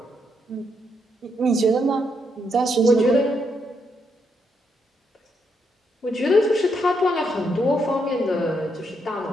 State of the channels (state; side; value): normal; both; correlation 0.78